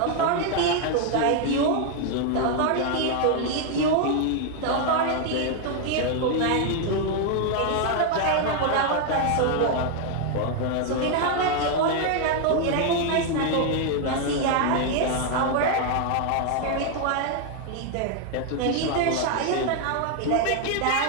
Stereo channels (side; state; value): both; different; correlation 0.00